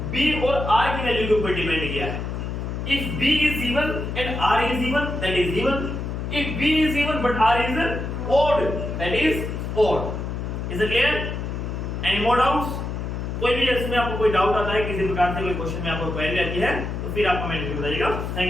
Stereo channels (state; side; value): noise; left; hum, 4 dB below the sound